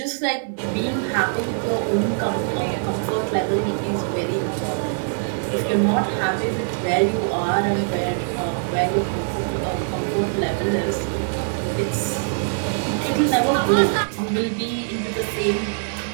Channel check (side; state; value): left; silent; digital silence